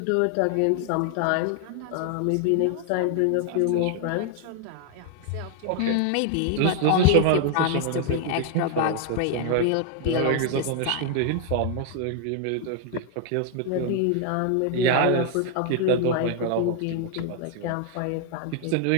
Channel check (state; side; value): different; both; correlation 0.00